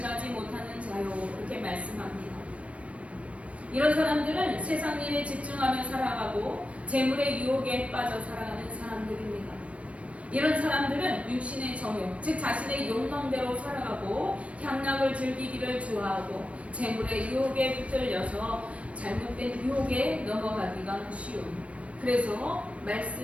못하는 자요, 이렇게 말씀합니다. 이런 사람들은 세상 일에 집중하며 살아가고 재물의 유혹에 빠져 살아가는 사람들입니다. 이런 사람들은 육신의 정욕, 즉 자신의 욕망대로 살아가고 향락을 즐기기를 좋아하고 재물의 유혹에 붙들려서 잘못된 유혹에 넘어가기가 쉬운, 그래서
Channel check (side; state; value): left; late; 0.063 ms